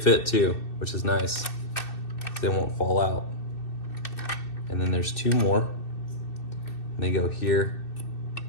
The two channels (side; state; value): right; late; 2.6 ms